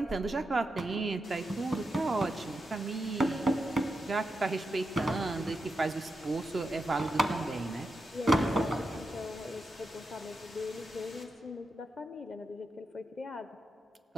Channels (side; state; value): both; normal; correlation 0.87